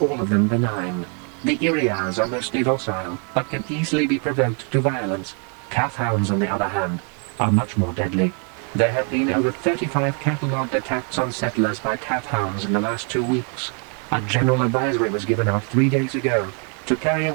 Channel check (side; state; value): left; quieter; 39.8 dB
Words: all of them benign. The Iriars are mostly docile, but can easily be provoked to violence. Calf hounds, on the other hand, are much more deadly. There have been over 35 catalogued attacks on settlers by calf hounds in the last 2 weeks. A general advisory was given out 3 days ago to carry a